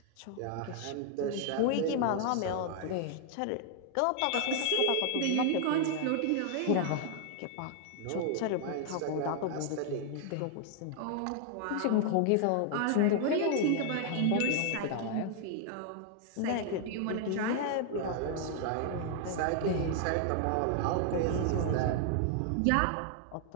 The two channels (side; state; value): both; different; correlation 0.00